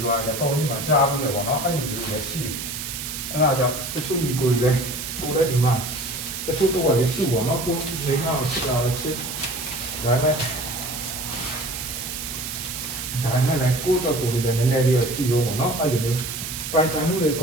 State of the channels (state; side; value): noise; right; hiss, 6 dB below the sound